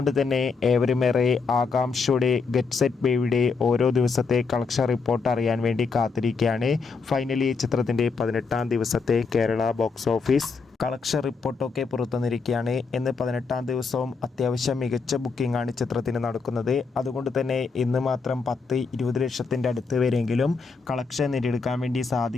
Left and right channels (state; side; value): quieter; right; 4.8 dB